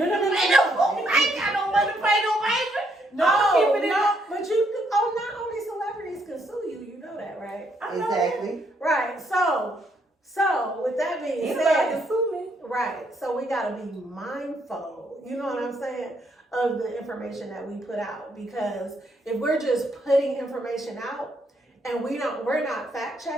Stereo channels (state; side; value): normal; both; correlation 0.73